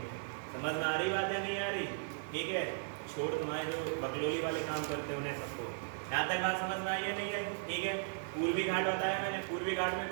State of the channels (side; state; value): left; silent; digital silence